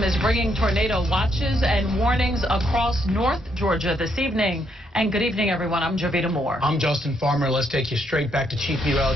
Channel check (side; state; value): both; normal; correlation 0.74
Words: is bringing tornado watches and warnings across North Georgia this evening. And good evening, everyone. I'm Jovita Moore. I'm Justin Farmer. Let's take you straight back to Chief